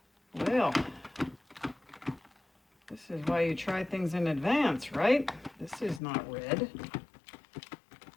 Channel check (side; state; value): right; drops out; at 6.0 s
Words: Well, this is why you try things in advance, right? This is not red.